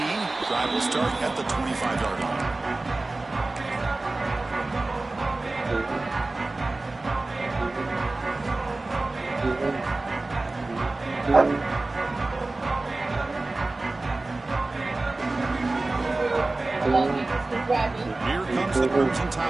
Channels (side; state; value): left; quieter; 3.1 dB